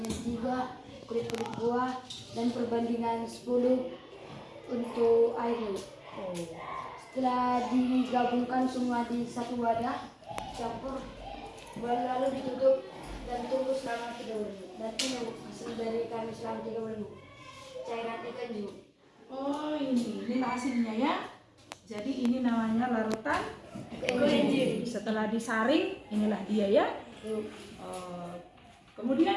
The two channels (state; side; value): identical; both; correlation 1.00